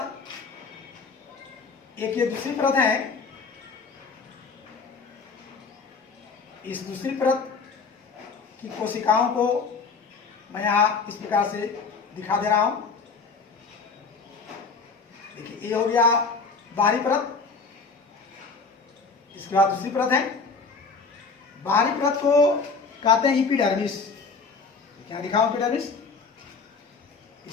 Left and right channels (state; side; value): quieter; right; 4.7 dB